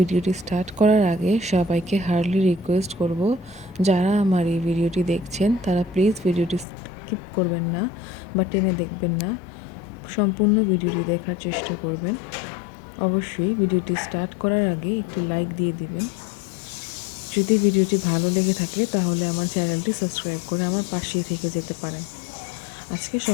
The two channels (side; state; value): right; drops out; at 6.7 s